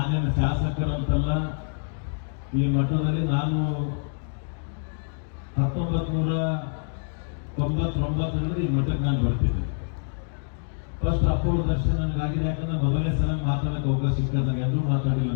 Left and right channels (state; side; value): silent; right; digital silence